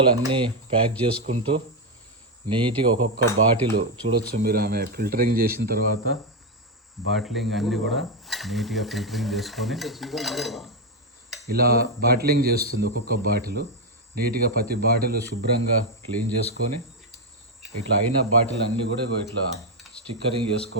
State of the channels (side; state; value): both; normal; correlation 0.05